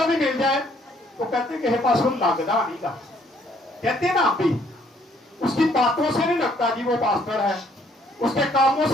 بھی مل جائے تو کہتے ہیں کہ پاس وہ لگتا نہیں کا، کہتے ہیں نا ہم بھی. اس کی باتوں سے نہیں لگتا جی وہ پاسٹر ہے، اس کے کاموں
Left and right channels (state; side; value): normal; both; correlation 0.65